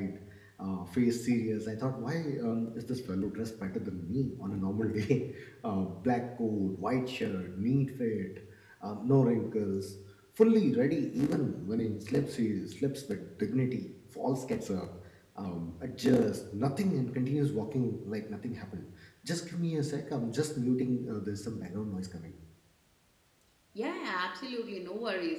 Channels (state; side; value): identical; both; correlation 1.00